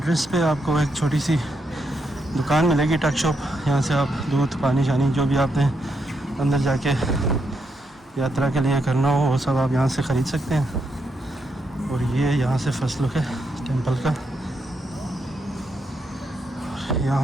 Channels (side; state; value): both; normal; correlation 0.80